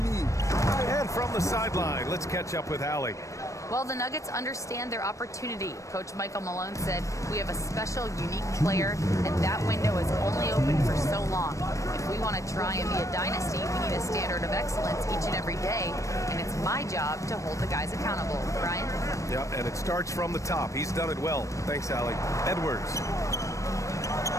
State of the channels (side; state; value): right; late; 0.15 ms